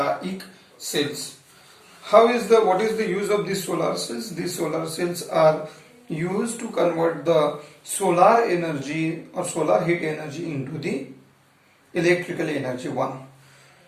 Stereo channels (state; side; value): identical; both; correlation 1.00